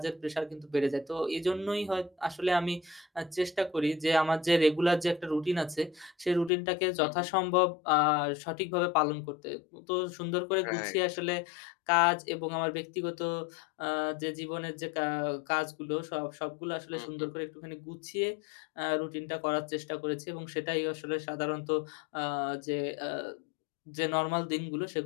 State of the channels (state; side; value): drops out; right; at 6.5 s